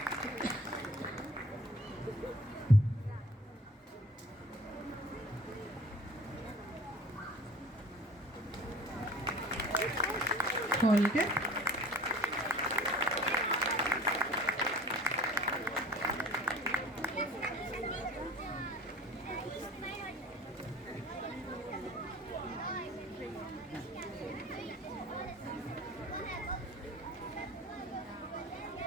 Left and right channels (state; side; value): normal; both; correlation 0.46